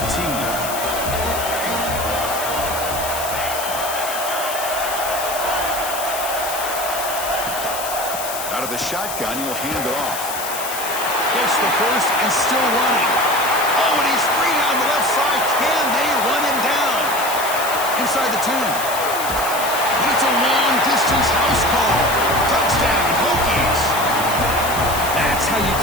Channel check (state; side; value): noise; left; hiss, 7 dB below the sound